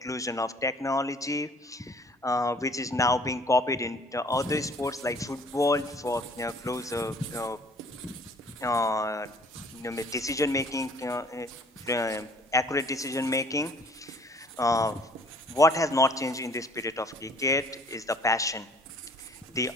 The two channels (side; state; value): both; normal; correlation 0.55